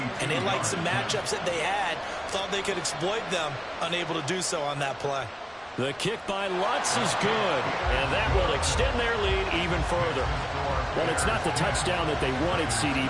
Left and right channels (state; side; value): identical; both; correlation 1.00